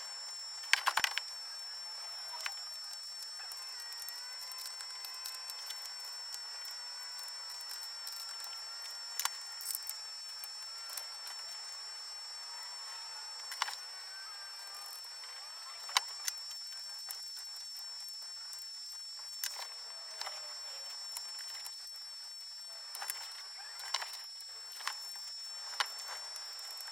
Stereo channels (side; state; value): both; normal; correlation 0.87